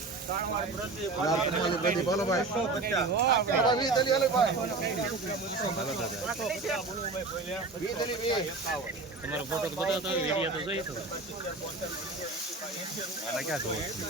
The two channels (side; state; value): left; quieter; 3.6 dB